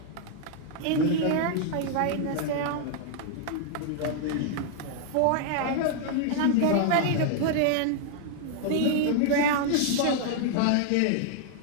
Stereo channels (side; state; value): both; different; correlation 0.00